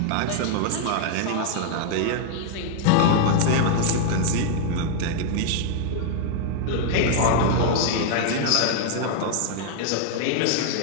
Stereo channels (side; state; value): both; different; correlation 0.00